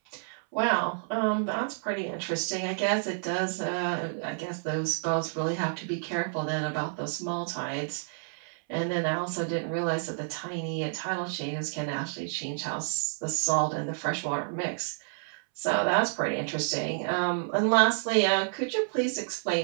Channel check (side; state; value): left; silent; 58 dB below the other